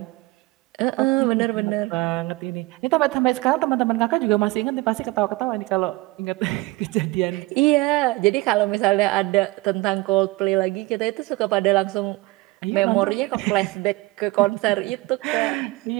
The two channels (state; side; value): quieter; left; 21.9 dB